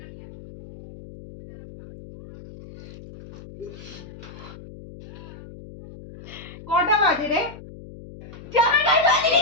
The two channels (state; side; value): noise; left; hum, 16 dB below the sound